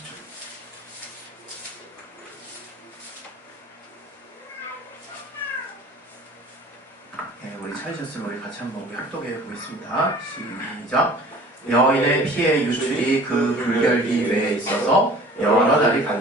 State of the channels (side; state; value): both; normal; correlation 0.47